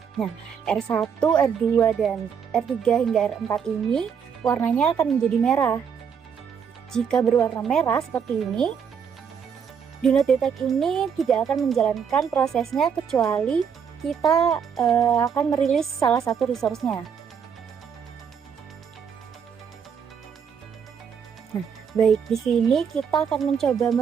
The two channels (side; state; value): left; quieter; 7.1 dB